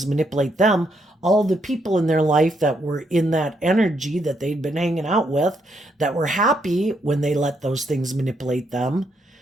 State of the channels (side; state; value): both; normal; correlation 0.76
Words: manipulate them, all the people in their life that were in that energy that they'd been hanging out with, that were happy when they let those things manipulate them,